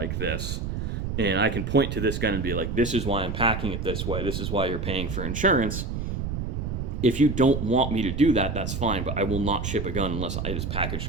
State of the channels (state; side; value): noise; right; rumble, 3 dB below the sound